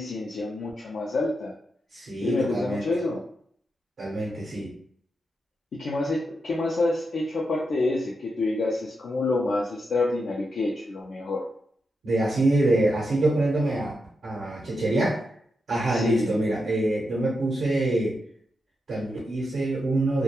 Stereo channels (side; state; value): both; normal; correlation 0.86